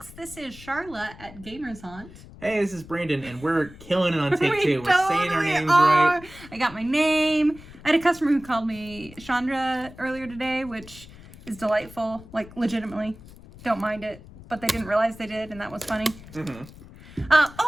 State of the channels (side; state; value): left; noise; rumble, 19 dB below the sound